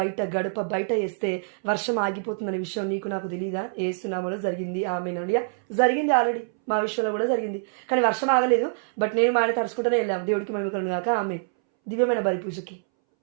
గడప బయట వేస్తే వర్షం ఆగిపోతుందనే విషయం నీకు నాకు తెలియదా? ఏసునామలో జరిగింది. ఆమేన్. జరిగింది, ఆల్రెడీ మా విషయంలో కూడా జరిగింది. కానీ వర్షం ఆగలేదు. బట్ నేను మా ఆయన తడుచుకుంటూనే వెళ్ళాము. దేవుడికి మహిమ కలుగును గాక. ఆమేన్. దివ్యమైన బలి పూజకి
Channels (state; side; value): silent; left; 61 dB below the other